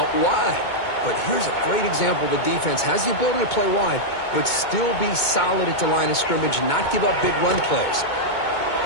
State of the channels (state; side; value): late; right; 2.2 ms